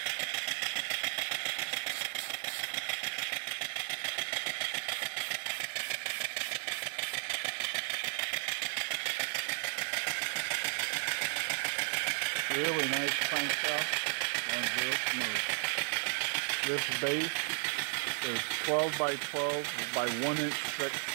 Really nice crankshaft, runs real smooth. This base is 12 by 12 by 1 inch thick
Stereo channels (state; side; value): silent; left; 55 dB below the other